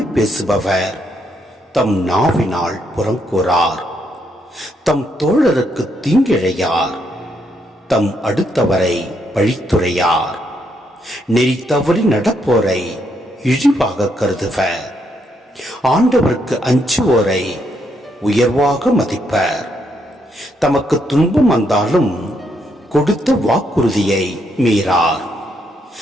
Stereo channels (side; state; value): both; normal; correlation 0.76